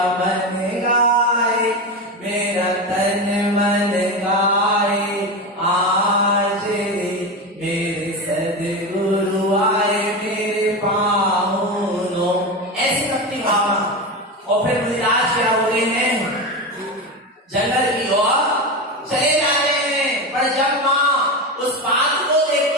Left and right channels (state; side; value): normal; both; correlation 0.19